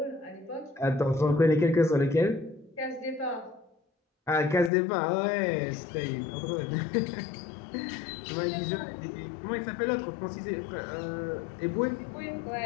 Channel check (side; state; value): right; drops out; at 4.7 s